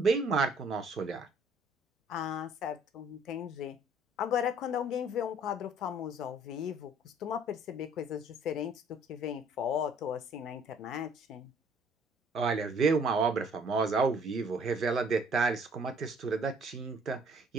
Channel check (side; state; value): both; normal; correlation 0.58